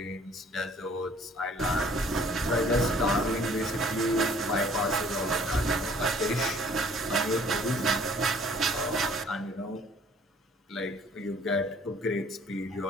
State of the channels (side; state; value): both; normal; correlation 0.56